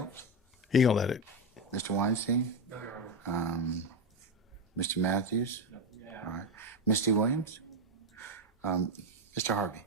He gonna let it. Mr. Weinstein? No, Your Honor. Mr. Matthews? All right. Misty Williams? Mr. Harvey?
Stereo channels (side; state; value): both; normal; correlation 0.11